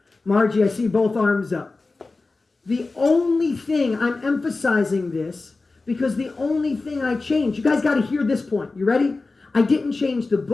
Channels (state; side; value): quieter; right; 3.6 dB